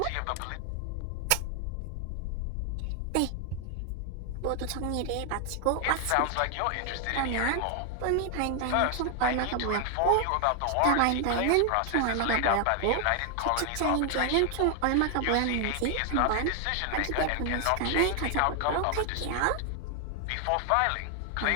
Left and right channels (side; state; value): both; different; correlation 0.00